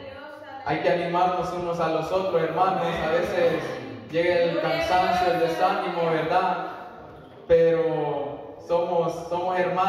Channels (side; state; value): both; identical; correlation 1.00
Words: Hay que animarnos unos a los otros, hermanos. A veces llega el cansancio, el desánimo, ¿verdad? Pero somos